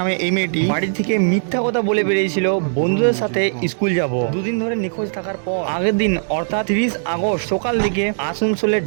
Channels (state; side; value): silent; left; digital silence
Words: এই মেয়েটি বাড়ি থেকে মিথ্যা কথা বলে বেরিয়েছিল বন্ধুদের সাথে স্কুল যাব। দুদিন ধরে নিখোঁজ থাকার পর আগের দিন অর্থাৎ 30 আগস্ট সকাল দিকে আসানসোলের